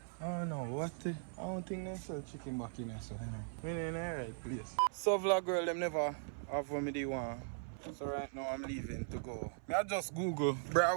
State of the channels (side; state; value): left; silent; 52 dB below the other